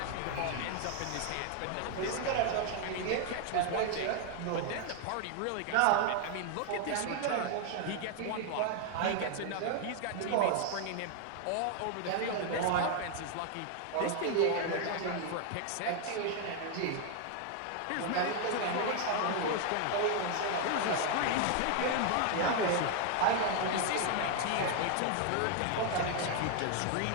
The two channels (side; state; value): both; different; correlation 0.00